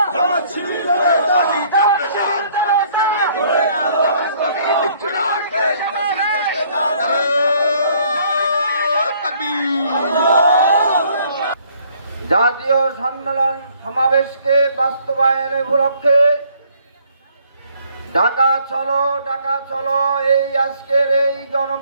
জাতীয় সম্মেলন সমাবেশকে বাস্তবায়নের উপলক্ষে ঢাকা চলো এই আজকের এই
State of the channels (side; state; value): both; inverted; correlation -0.63